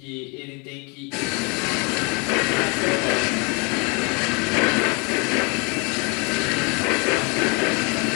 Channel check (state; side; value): quieter; right; 31.9 dB